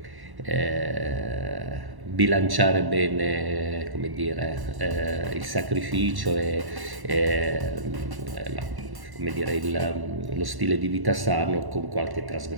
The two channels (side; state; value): left; late; 1.1 ms